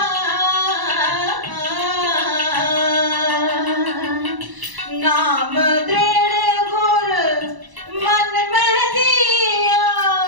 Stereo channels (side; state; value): left; late; 1.0 ms